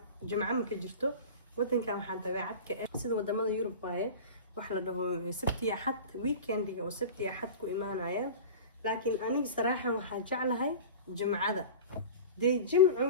jimco ma ka jirto wadankan waxaan dabeecad ka ah sida wadamada Yurub waaye wax la dhaho sabti axad weekendiga oo sabti axad ku imaanayaan laakiin aniga saraaxan waxaan jeclahay jimcada de jimcu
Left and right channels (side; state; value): both; inverted; correlation -0.34